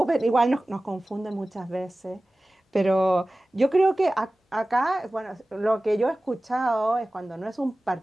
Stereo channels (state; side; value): normal; both; correlation 0.97